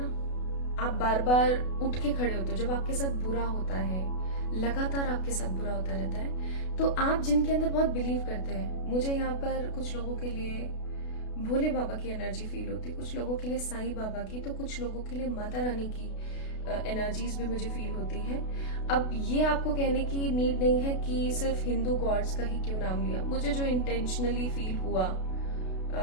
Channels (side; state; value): right; late; 32 ms